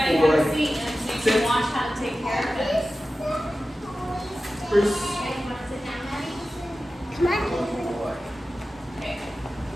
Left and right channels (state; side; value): normal; both; correlation 0.94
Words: have a seat and so you can watch how to take care of this. Bruce. Come on. Okay.